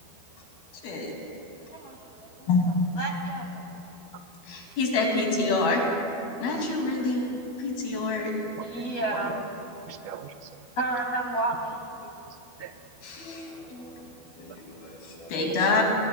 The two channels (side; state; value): right; late; 12 ms